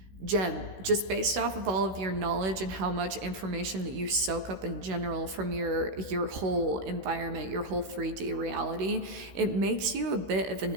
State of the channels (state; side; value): late; left; 16 ms